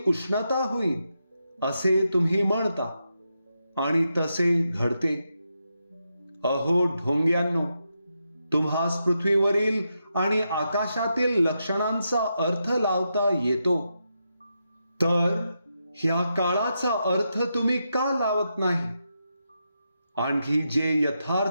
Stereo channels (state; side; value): inverted; both; correlation -0.85